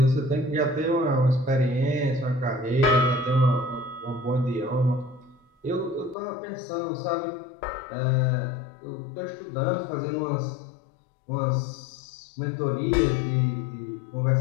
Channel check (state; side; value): drops out; right; at 6.2 s